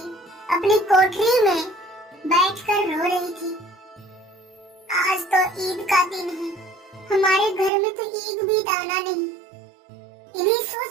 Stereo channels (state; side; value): drops out; left; at 7.7 s